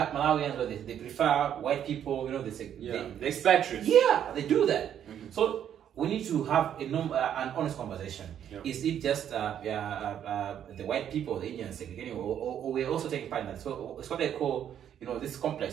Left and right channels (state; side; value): quieter; left; 9.6 dB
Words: Malawians, where they prefer white people, they say... Yeah, they expatriates. Yeah, they do that. So we need to have an honest conversation. Yeah. Is it just the white people, the Indians, segregating, or we're also taking part in that? So it's what they call, this